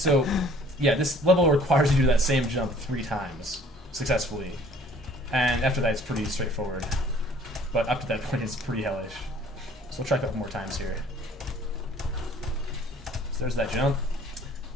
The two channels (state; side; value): normal; both; correlation 0.55